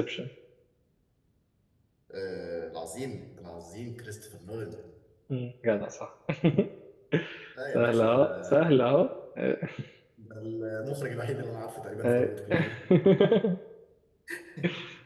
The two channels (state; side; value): identical; both; correlation 1.00